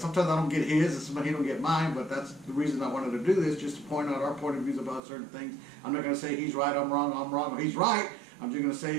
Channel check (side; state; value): left; drops out; at 5.0 s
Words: I don't get his, and sometimes he don't get mine, but that's the reason I wanted to do this, just to point out our point of views about certain things. I'm not going to say he's right, I'm wrong, or he's right. I'm just going to